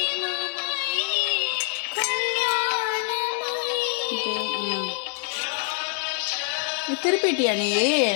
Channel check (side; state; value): right; quieter; 38.1 dB